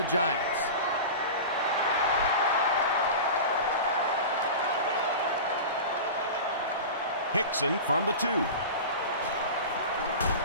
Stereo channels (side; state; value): both; inverted; correlation -0.30